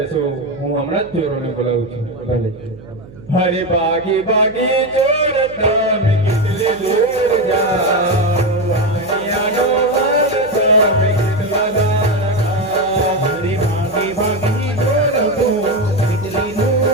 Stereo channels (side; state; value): right; noise; hum, 19 dB below the sound